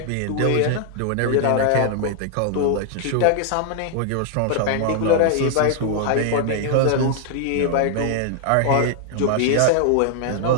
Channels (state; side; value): different; both; correlation 0.00